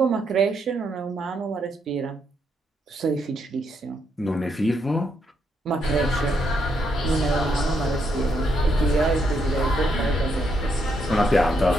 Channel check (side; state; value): both; normal; correlation 0.77